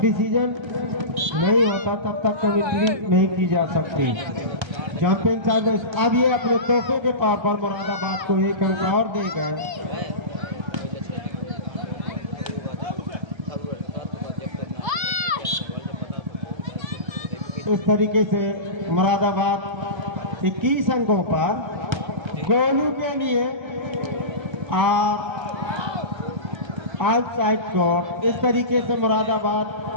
डिसीजन नहीं होता तब तक कमेंट्री नहीं की जा सकती। जंपिंग सर्विस अब ये अपने तोहफे के तौर पर मुरादाबाद को एक अंक और दे गए। इस तरीके से मुरादाबाद 21 अंकों पर गोलू के लिए आउटसाइड कोर्ट। इस तरीके से मुरादाबाद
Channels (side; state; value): left; late; 1.3 ms